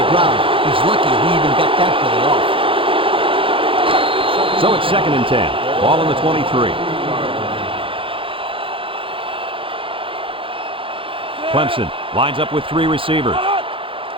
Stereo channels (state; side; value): late; left; 0.26 ms